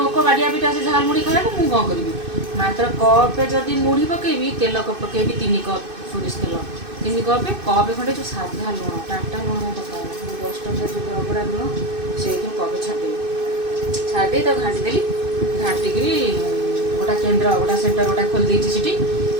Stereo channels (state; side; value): late; left; 2.6 ms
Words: ଲୋକ ବାଡ଼ିଆ ପିଟା ସେ ଝାଲମୁଢ଼ି ଖାଇବାକୁ, ମୁଁ କ'ଣ କରିବି? ମାତ୍ର କପ୍ରେ ଯଦି ମୁଢ଼ି ପକେଇବି, ତେଲ ପକେଇବି 3 କପ୍ ସୋରିଷ ତେଲ, 3 କପ୍ ଖଣ୍ଡେ ଯେଉଁ ସାଧା ଲୁଣ, ଟାଟା ଲୁଣ ପକାଏ 10 ଟଙ୍କା ଯେଉଁ ରଗଡ଼ା ଲୁଣ, ସେଇଥିରୁ କପ୍ ଛାଡ଼ିଦେବି। ଛାଡ଼ିଦେଇ ତାକୁ ଘାଣ୍ଟିଦେଲି। ଘାଣ୍ଟିକିରି ଗୋଟା କେନ୍ଦ୍ର ଗୋଟା ସେଣ୍ଟର ଗୋଟା ଖୋଲି ଦେଇଛି ସେଠି।